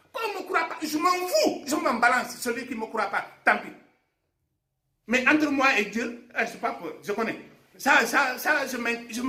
on ne me croit pas, je m'en fous, je m'en balance. Celui qui ne me croit pas, tant pis. Mais entre moi et Dieu, je ne sais pas peur, je connais. Ça je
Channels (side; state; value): both; identical; correlation 1.00